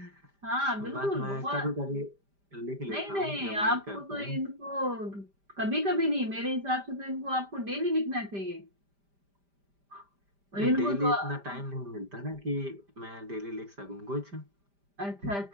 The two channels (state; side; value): late; left; 5.0 ms